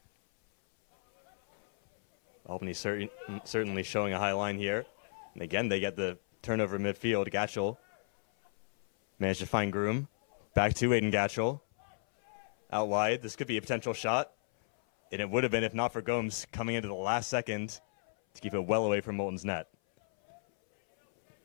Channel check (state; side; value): silent; right; 55 dB below the other